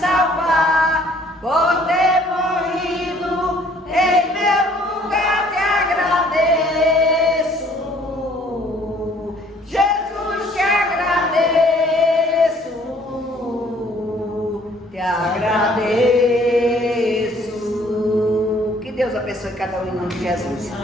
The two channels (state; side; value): normal; both; correlation 0.59